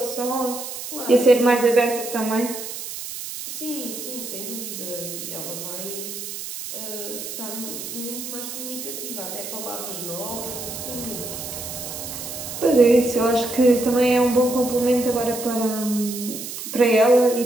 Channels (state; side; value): noise; right; hiss, 8 dB below the sound